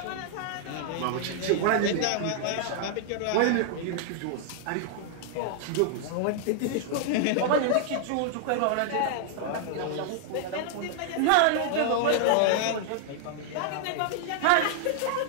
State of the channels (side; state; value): both; different; correlation -0.01